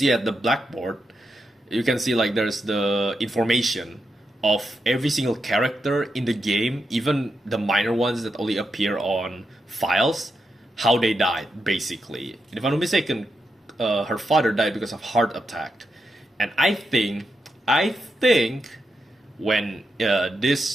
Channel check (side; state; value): both; normal; correlation 0.86